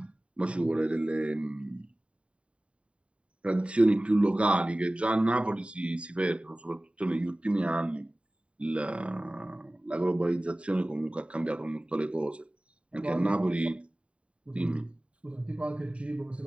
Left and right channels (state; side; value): late; left; 0.061 ms